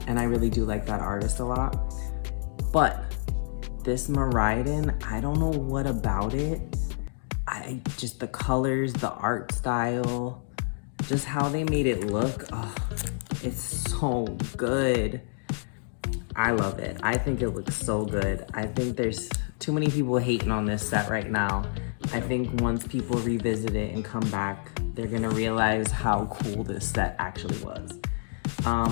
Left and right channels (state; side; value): silent; right; digital silence